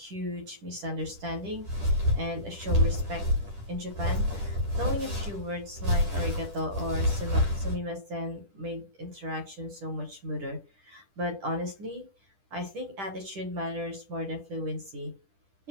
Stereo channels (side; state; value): left; late; 10 ms